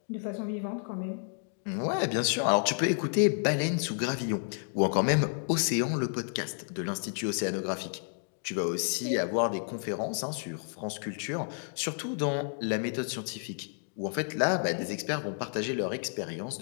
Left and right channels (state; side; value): silent; right; 57 dB below the other